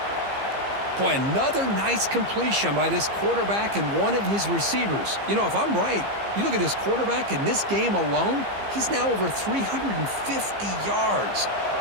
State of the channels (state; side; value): late; left; 15 ms